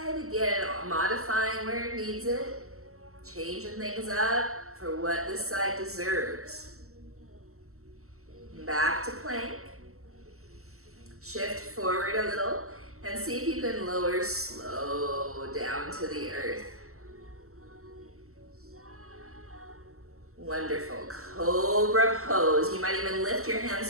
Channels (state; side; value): late; left; 0.63 ms